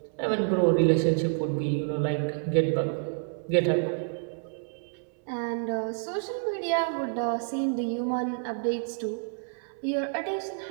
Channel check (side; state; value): left; silent; 59 dB below the other